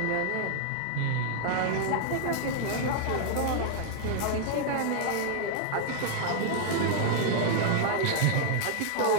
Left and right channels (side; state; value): both; different; correlation 0.00